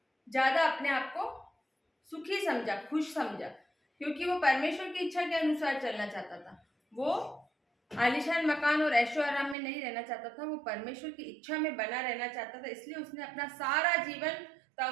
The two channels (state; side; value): drops out; left; at 9.6 s